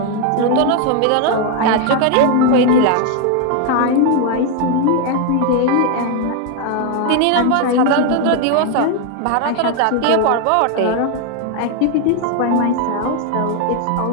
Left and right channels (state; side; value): different; both; correlation 0.01